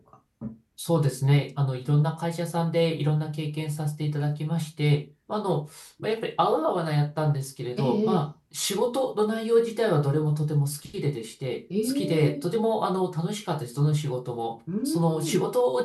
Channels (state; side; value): identical; both; correlation 1.00